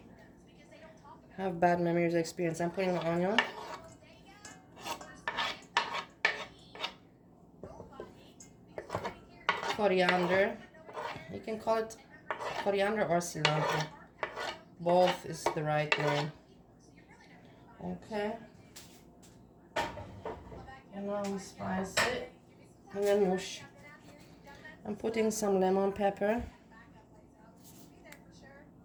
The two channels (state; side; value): identical; both; correlation 1.00